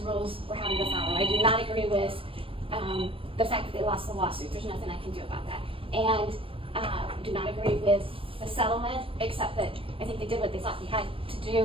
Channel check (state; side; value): late; left; 0.26 ms